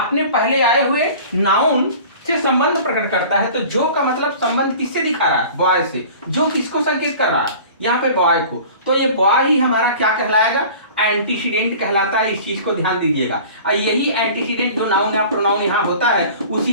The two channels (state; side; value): inverted; both; correlation -0.42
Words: पहले आए हुए नाउन से संबंध प्रकट करता है। तो जो का मतलब संबंध किससे दिखा रहा है? बॉय से। जो किसको संकेत कर रहा है? यहाँ पे बॉय को। तो ये बॉय ही हमारा क्या कहलाएगा? एंटीसीडेंट कहलाता है। इस चीज को ध्यान दीजिएगा। और यही एंटीसीडेंट जो नाउन या प्रोनाउन यहाँ होता है उसी